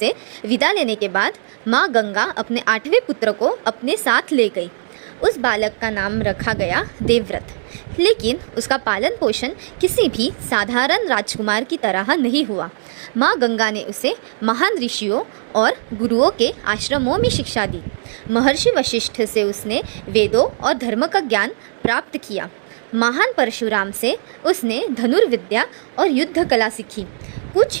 विदा लेने के बाद माँ गंगा अपने 8वें पुत्र को अपने साथ ले गई। उस बालक का नाम रखा गया देवव्रत, लेकिन उसका पालन पोषण किसी भी साधारण राजकुमार की तरह नहीं हुआ। माँ गंगा ने उसे महान ऋषियों और गुरुओं के आश्रमों में शिक्षा दी। महर्षि वशिष्ठ से उसने वेदों और धर्म का ज्ञान प्राप्त किया। महान परशुराम से उसने धनुर्विद्या और युद्ध कला सीखी। कुछ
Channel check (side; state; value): left; silent; digital silence